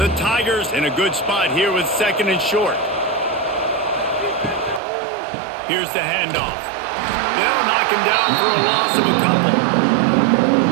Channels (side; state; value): left; drops out; at 4.8 s